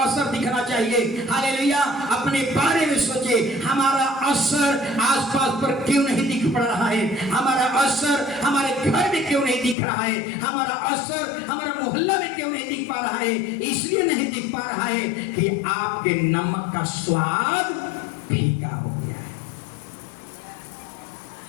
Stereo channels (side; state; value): right; drops out; at 9.8 s